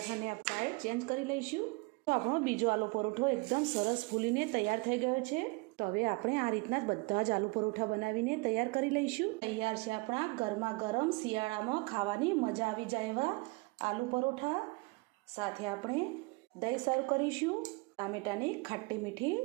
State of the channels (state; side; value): quieter; left; 27.7 dB